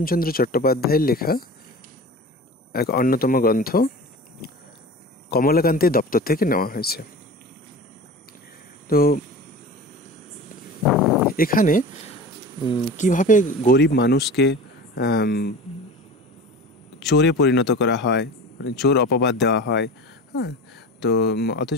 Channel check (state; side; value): normal; both; correlation 0.34